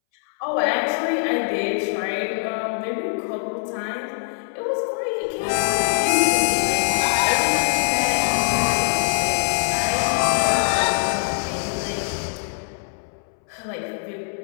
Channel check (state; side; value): silent; right; 64 dB below the other